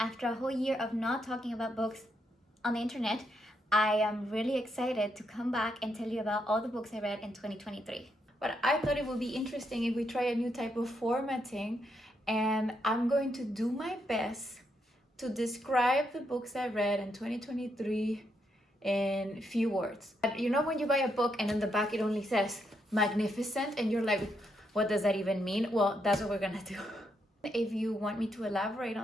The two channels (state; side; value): normal; both; correlation 0.79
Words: a whole year of not talking about books on the internet, I am really excited to come back and tell you about all the books I read in 2023. But I thought it would be interesting if we try a new type of formatting, and I'm going to do my best to describe the books I read in 2023 in few words. You know when you buy a book and in the back it only says magnificent and you're like, what does that even mean? Well, that's what we're gonna do. If you want me to elaborate